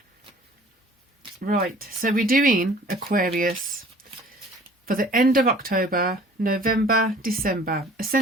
Right, so we're doing Aquarius for the end of October, November, December,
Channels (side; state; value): both; normal; correlation 0.50